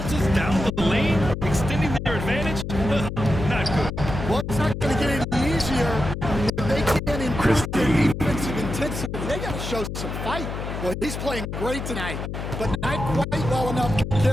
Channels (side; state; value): left; noise; hum, 6 dB below the sound